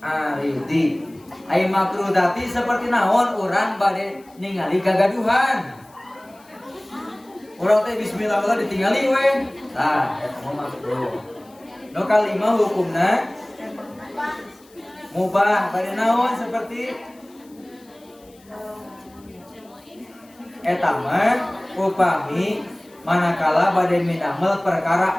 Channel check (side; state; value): left; noise; hiss, 29 dB below the sound